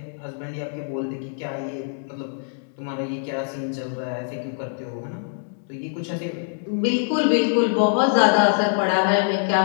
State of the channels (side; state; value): right; silent; digital silence